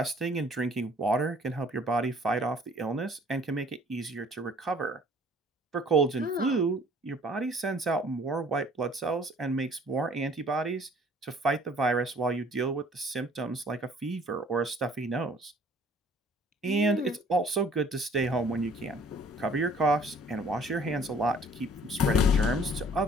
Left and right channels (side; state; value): both; normal; correlation 0.55